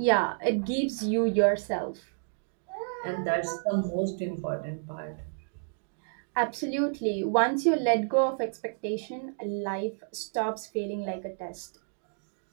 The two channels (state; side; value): silent; left; digital silence